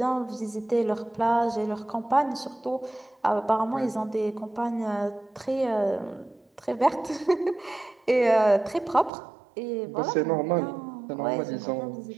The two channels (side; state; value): left; drops out; at 9.1 s